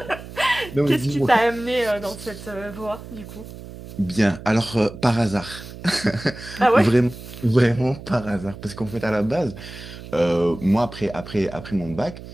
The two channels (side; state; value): right; noise; hum, 14 dB below the sound